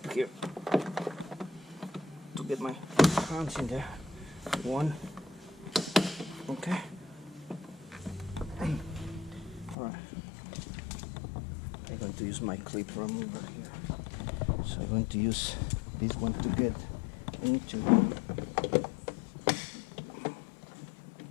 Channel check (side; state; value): right; drops out; at 9.8 s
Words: here to get my hands in there. One. Okay. Alright. I'm going to use my clip remover here. So I'm going to use this one to get into.